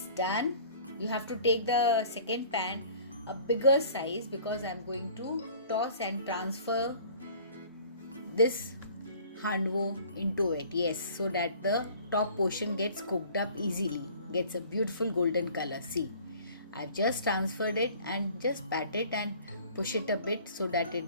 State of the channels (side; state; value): both; inverted; correlation -0.50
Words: done. You have to take the second pan a bigger size because I'm going to toss and transfer this handvo into it. Yes, so that the top portion gets cooked up easily, gets a beautiful golden color. See, I've just transferred it and just pat it and push it a bit so that